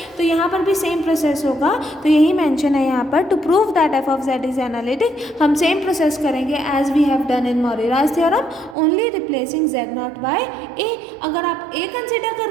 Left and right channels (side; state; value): left; drops out; at 8.8 s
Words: तो यहाँ पर भी सेम प्रोसेस होगा. तो यही मेंशन है यहाँ पर, to prove that f of z is analytic हम सेम प्रोसेस करेंगे as we have done in Morera's theorem, only replacing z naught by a. अगर आप a कंसिडर